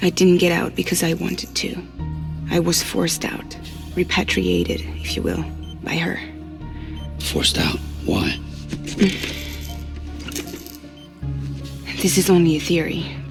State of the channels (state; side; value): identical; both; correlation 1.00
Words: I didn't get out because I wanted to. I was forced out. Repatriated, if you will, by her. Forced out? Why? This is only a theory,